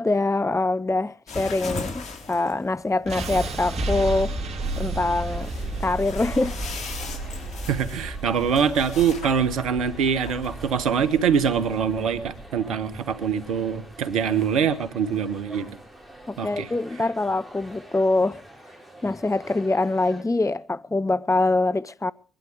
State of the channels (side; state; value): both; normal; correlation 0.66